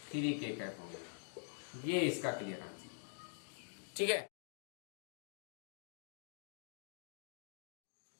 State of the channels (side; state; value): right; silent; digital silence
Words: 3k कैप होगा। ये इसका क्लियर आंसर। ठीक है,